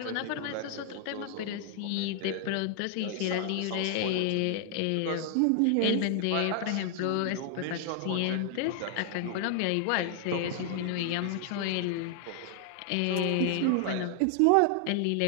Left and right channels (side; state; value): both; different; correlation 0.00